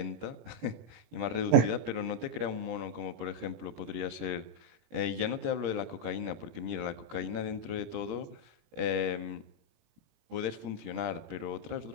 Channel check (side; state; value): left; late; 17 ms